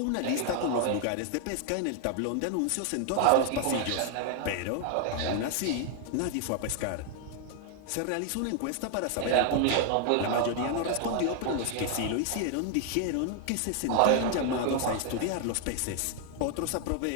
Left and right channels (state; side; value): different; both; correlation 0.00